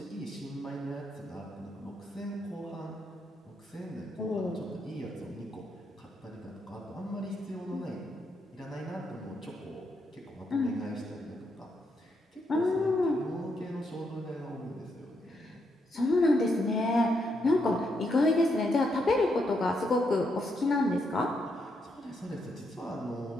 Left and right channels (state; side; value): normal; both; correlation 0.79